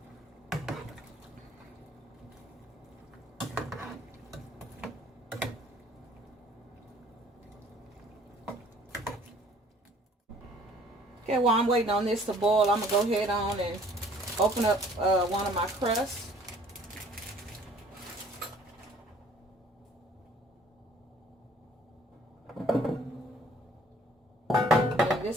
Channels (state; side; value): normal; both; correlation 0.56